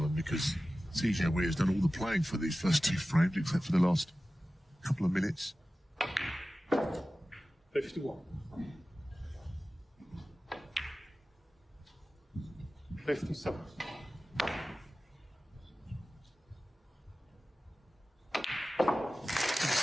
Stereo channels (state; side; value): normal; both; correlation 0.95